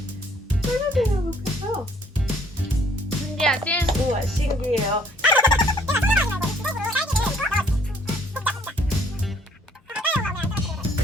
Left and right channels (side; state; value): both; normal; correlation 0.62